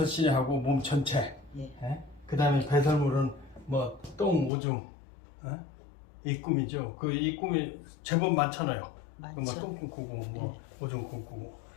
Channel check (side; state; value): right; drops out; at 4.5 s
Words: 몸 전체. 그 다음에 배설물은 뭐 똥, 오줌, 이 꿈이죠. 이 꿈이 제법 많잖아요. 뭐 똥 꿈꾸고 뭐 오줌 꿈꾸고.